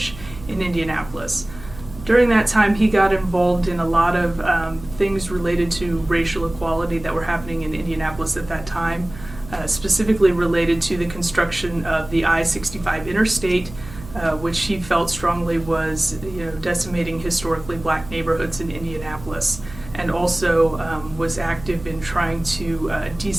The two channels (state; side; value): noise; right; hum, 16 dB below the sound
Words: in Indianapolis. During that time, he got involved in a lot of things related to racial equality that were happening in Indianapolis at that time. Specifically related to the construction of the I-65 interstate, which he felt strongly was, decimating historically black neighborhoods in Indianapolis, and also was active in trying to